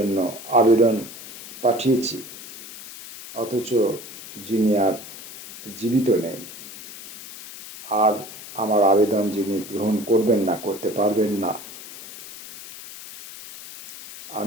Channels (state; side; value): noise; left; hiss, 14 dB below the sound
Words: আবেদন পাঠিয়েছি, অথচ যিনি আর জীবিত নেই, আর আমার আবেদন যিনি গ্রহণ করবেন না, করতে পারবেন না,